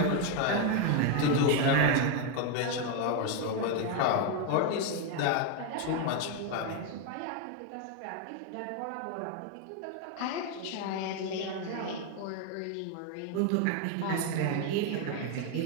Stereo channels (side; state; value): both; different; correlation 0.01